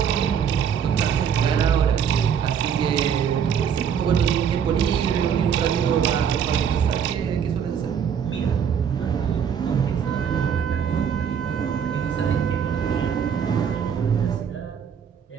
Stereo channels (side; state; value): left; quieter; 7.8 dB